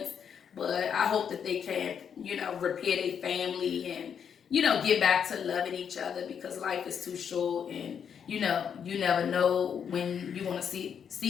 But I hope that they can, you know, repair their family and, you know, get back to loving each other, because life is too short, and, you know, you never know when you want to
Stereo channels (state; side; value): quieter; right; 7.6 dB